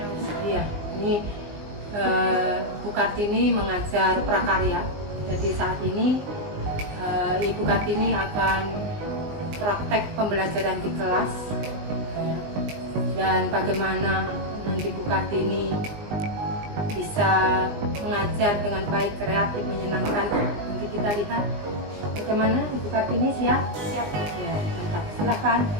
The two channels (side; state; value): left; late; 20 ms